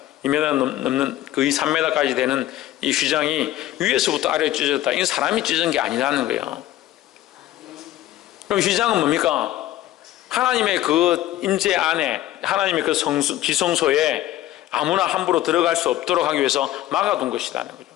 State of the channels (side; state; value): right; quieter; 14.2 dB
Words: 2m 넘는 거의 3m까지 되는 이 휘장이 위에서부터 아래로 찢어졌다. 이건 사람이 찢은 게 아니라는 거예요. 그럼 휘장은 뭡니까? 하나님의 그 임재 안에 하나님의 그 지성소에 아무나 함부로 들어갈 수 없도록 하기 위해서 막아둔 것이라는 거죠.